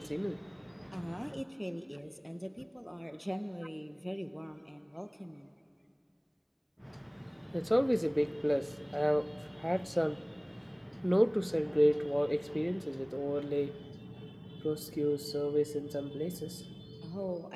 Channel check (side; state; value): both; identical; correlation 1.00